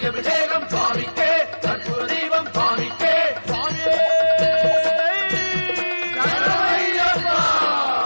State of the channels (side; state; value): both; inverted; correlation -1.00